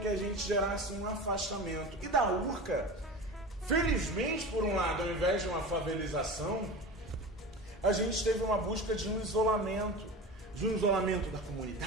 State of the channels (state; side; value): normal; both; correlation 0.31